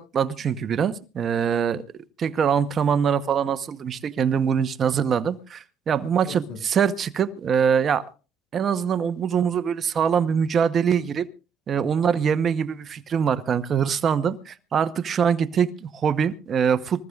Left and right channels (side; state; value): left; quieter; 7.0 dB